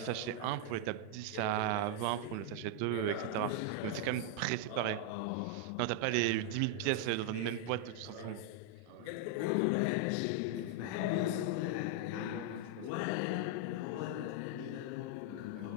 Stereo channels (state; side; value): different; both; correlation 0.00